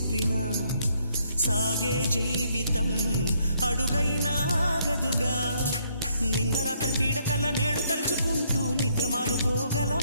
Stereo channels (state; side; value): inverted; both; correlation -0.70